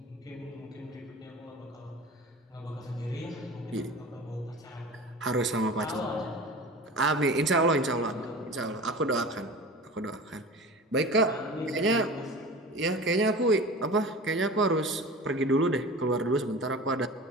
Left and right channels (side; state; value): both; normal; correlation 0.35